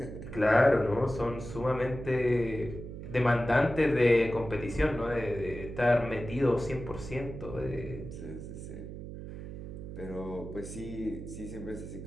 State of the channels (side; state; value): right; noise; hum, 10 dB below the sound